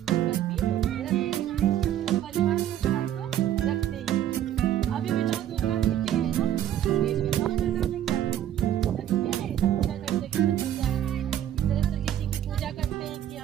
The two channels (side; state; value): left; quieter; 11.1 dB